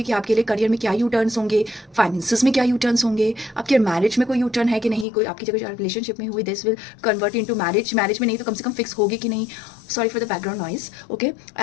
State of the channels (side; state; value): right; drops out; at 5.1 s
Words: कि आपके लिए करियर में क्या यू टर्न्स होंगे, फाइनेंसिस में क्या यू टर्न्स होंगे, आपके मैरिज में कोई यू टर्न है कि नहीं, कोई आपकी जगह रिलेशनशिप में हुई this will convert into marriage, marriage में नहीं तो कम से कम फिक्स होगी कि नहीं. Sorry for the background noise. Okay,